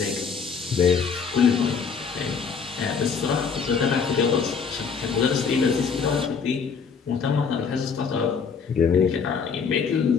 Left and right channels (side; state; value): right; quieter; 5.9 dB